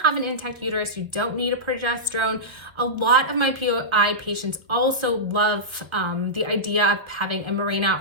an intact uterus, you don't need a progesterone. A lot of my POI patients also love the idea of having a Mirena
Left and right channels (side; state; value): left; late; 1.2 ms